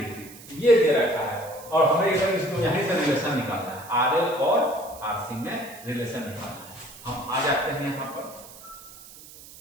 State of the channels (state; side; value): noise; right; hiss, 18 dB below the sound